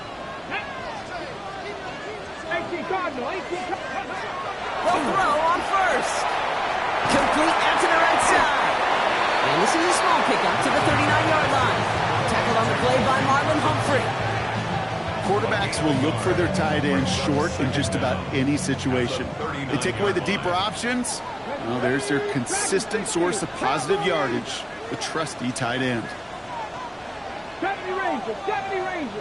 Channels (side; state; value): both; identical; correlation 1.00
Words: Cardinal, 18 Cardinal. They'll throw on first. Complete out to the right side. And this is a small pickup to the 39-yard line. Tackled on the play by Marlon Humphrey. Quarterbacks will look for their tight end short in just about any situation. They take away the deeper options. Well, there's their consistent source of positive yardage, the trusty tight end. 70 Rangers, 70